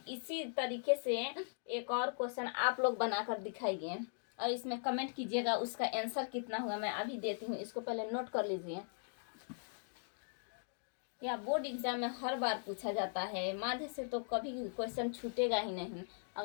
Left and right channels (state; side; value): silent; right; digital silence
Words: इसी तरीके से एक और क्वेश्चन आप लोग बनाकर दिखाइए और इसमें कमेंट कीजिएगा उसका आंसर कितना हुआ। मैं अभी देती हूँ, इसको पहले नोट कर लीजिए। या बोर्ड एग्जाम में हर बार पूछा जाता है, माध्य से तो कभी क्वेश्चन छूटेगा ही नहीं